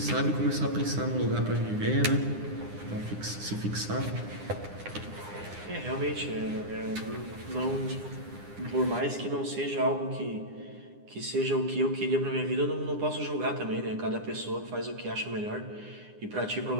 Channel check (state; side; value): late; left; 9.8 ms